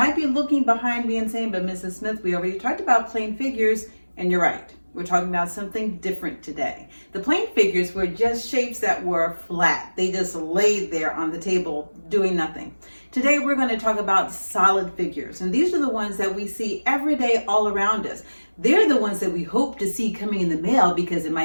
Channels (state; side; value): inverted; both; correlation -1.00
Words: be looking behind me and saying, but Mrs. Smith, we already talked about plane figures, and you're right. We're talking about something different today. The plane figures were just shapes that were flat. They just laid there on the table doing nothing. Today we're going to talk about solid figures, and these are the ones that we see every day all around us. They're the ones that we hope to see coming in the mail because it